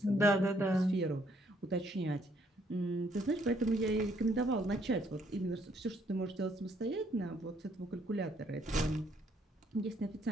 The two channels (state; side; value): normal; both; correlation 0.68